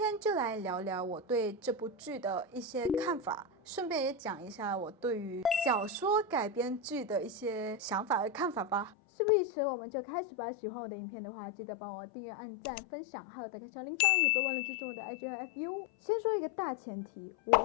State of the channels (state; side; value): drops out; right; at 8.9 s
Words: 就来聊聊我对这部剧的一些看法，顺便也讲一下我对于小说改编剧的一些想法和看法吧。事不宜迟，我们就开始吧。喜欢我的影片的话，记得帮我订阅、按赞、分享，还有打开小铃铛，也别忘了追踪我的 IG 和 FB。先说一个大前提，我